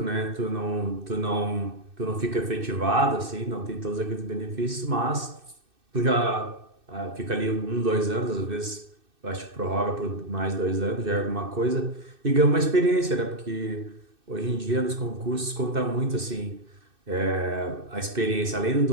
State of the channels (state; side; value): late; left; 2.6 ms